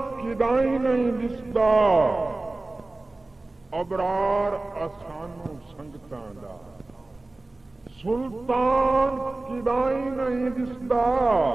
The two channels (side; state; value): left; quieter; 3.1 dB